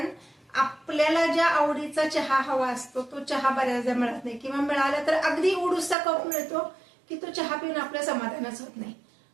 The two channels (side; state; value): left; drops out; at 6.0 s